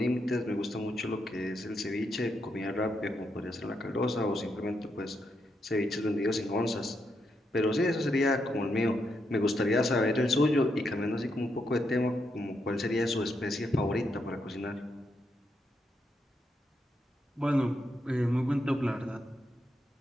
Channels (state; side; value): normal; both; correlation 0.81